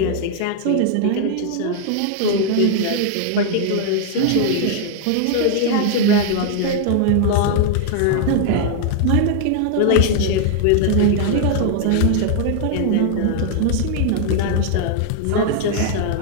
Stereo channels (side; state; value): both; different; correlation -0.01